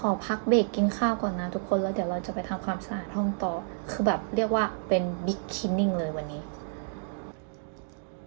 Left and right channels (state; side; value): silent; left; digital silence